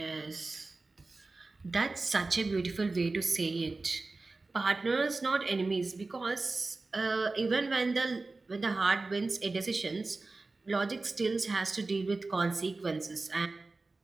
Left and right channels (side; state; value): left; quieter; 3.5 dB